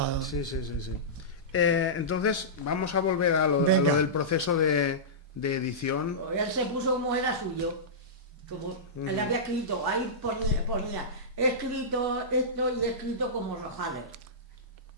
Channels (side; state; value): both; normal; correlation -0.17